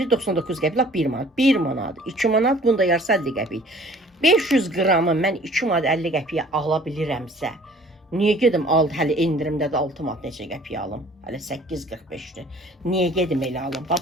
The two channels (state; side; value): normal; both; correlation 0.53